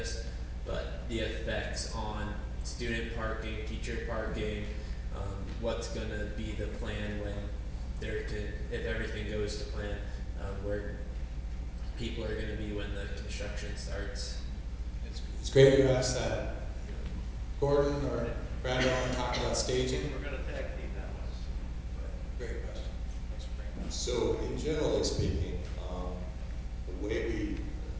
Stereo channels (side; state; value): both; identical; correlation 1.00